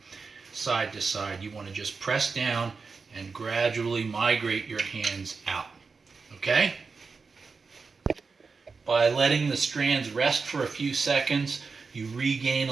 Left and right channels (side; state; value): left; quieter; 4.7 dB